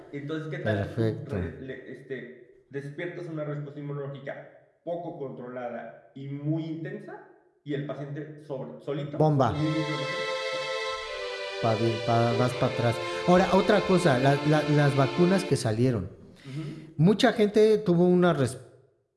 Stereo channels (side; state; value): both; identical; correlation 1.00